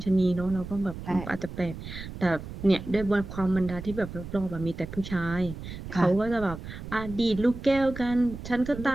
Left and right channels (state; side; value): noise; right; rumble, 11 dB below the sound